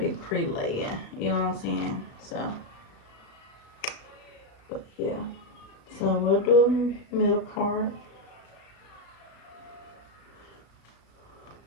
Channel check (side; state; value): right; late; 36 ms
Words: pre-laying, you know what I'm saying? So, but yeah. So we'll do middle part.